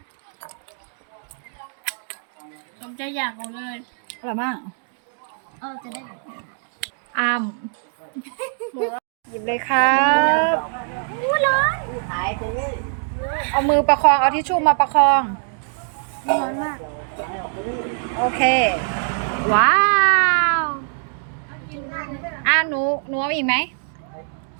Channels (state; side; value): silent; left; 64 dB below the other